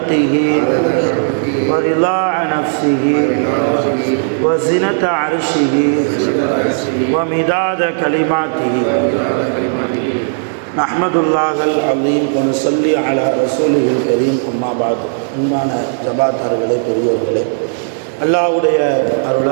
ورضاء نفسه وزنة عرشه ومداد كلماته نحمد الله العظيم ونصلي على رسوله الكريم أما بعد அன்பான ஜமாத்தார்களே, பெரியோர்களே, அல்லாஹ்வுடைய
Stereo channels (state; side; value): silent; left; digital silence